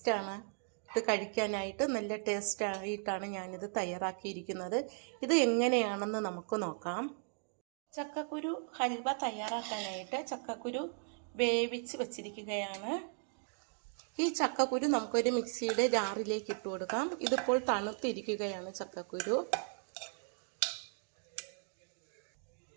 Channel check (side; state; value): left; silent; 53 dB below the other